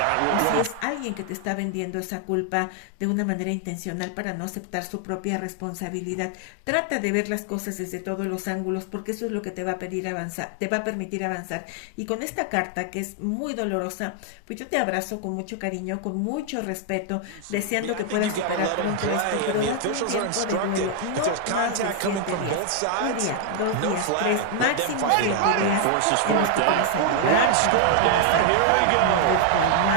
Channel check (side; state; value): both; different; correlation 0.00